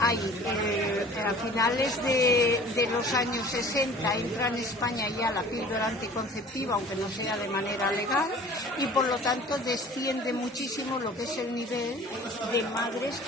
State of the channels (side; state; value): both; normal; correlation 0.46